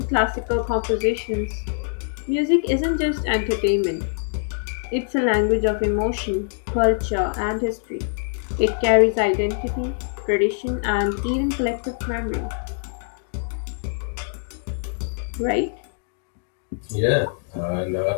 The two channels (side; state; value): right; silent; digital silence